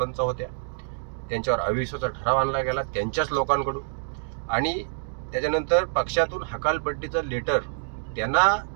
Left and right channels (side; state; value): left; silent; 61 dB below the other